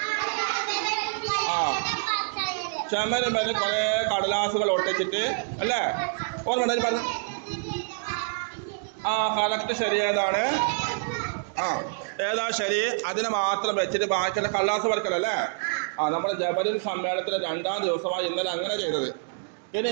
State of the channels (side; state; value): left; silent; digital silence